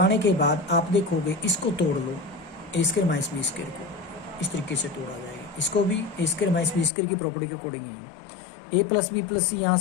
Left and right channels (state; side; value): drops out; right; at 6.9 s